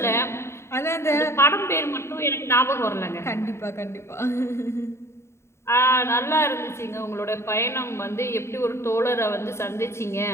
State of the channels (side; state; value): right; late; 0.13 ms